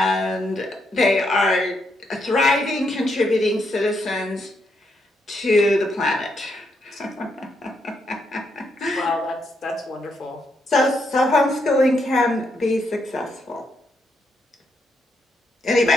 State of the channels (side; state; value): both; normal; correlation 0.78